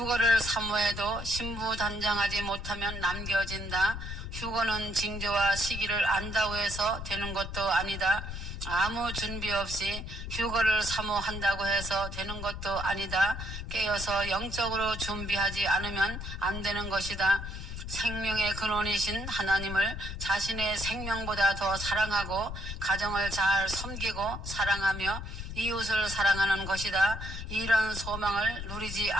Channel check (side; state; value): left; noise; rumble, 7 dB below the sound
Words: 사모해도 신부 단장하지 못하면 남겨진다. 휴거는 징조와 시기를 안다고 해서 되는 것도 아니다. 아무 준비 없이 휴거를 사모한다고 해서 되는 것도 아니다. 깨어서 영적으로 준비하지 않으면 안 되는 것이다. 생명의 근원이신 하나님을 자신의 생명보다 더 사랑하고 가정을 잘 섬기고 사랑하며 이웃을 사랑하는 것이다. 이런 소망을 누리지